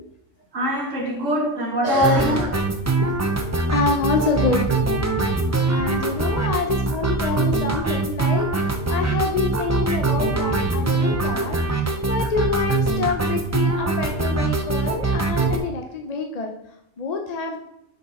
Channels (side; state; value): both; normal; correlation 0.24